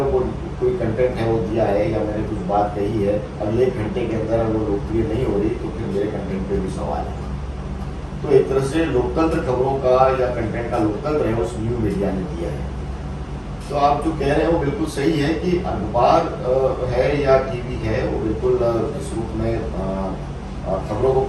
वो कोई कंटेंट है वो दिया है या मैंने कुछ बात कही है, अगले घंटे के अंदर वो लोकप्रिय नहीं हो रही तो फिर मेरे कंटेंट पे भी सवाल है। तो एक तरह से लोकतंत्र खबरों का या कंटेंट का लोकतंत्र है उस न्यू मीडिया ने दिया है। तो आप जो कह रहे हैं वो बिल्कुल सही है कि अखबार है या टीवी है वो बिल्कुल इस रूप में खबरों को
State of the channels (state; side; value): identical; both; correlation 1.00